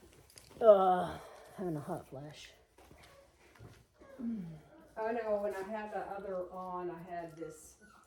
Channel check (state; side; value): identical; both; correlation 1.00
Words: Having a hot flash. I know when I had the other on, I had this